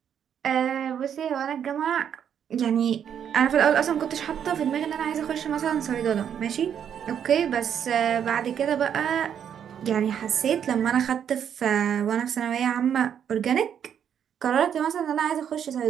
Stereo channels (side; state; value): left; quieter; 8.7 dB